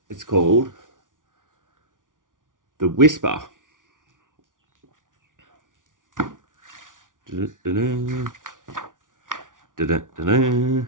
it's called The Whisper. Da-da-da-da. Da-da-da-da.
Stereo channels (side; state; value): left; late; 0.88 ms